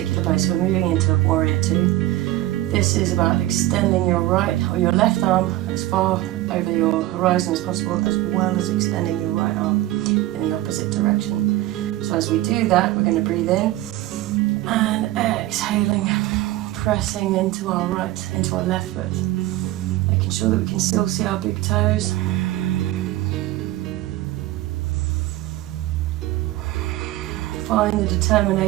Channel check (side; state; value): left; quieter; 15.8 dB